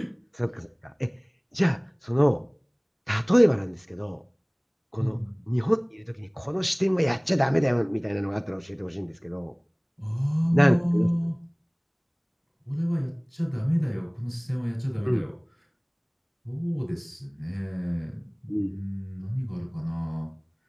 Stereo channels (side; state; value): both; identical; correlation 1.00